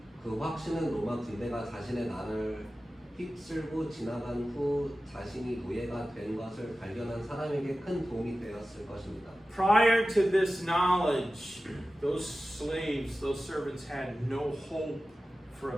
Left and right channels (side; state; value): both; normal; correlation 0.95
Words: 그 확신은 로마 군대가 자신의 나라를 휩쓸고 지나간 후 자신이 노예가 된 것을 발견한 사람에게 큰 도움이 되었을 것입니다. Prior to this knowledge, those slaves, those servants had no hope for a